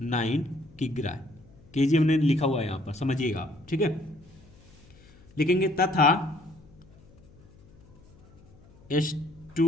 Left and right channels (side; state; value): left; noise; hum, 26 dB below the sound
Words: किग्रा। केजी हमने लिखा हुआ है यहां पर, समझिएगा आप। ठीक है, लिखेंगे तथा